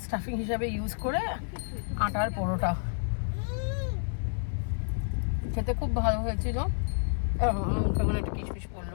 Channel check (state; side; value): silent; right; digital silence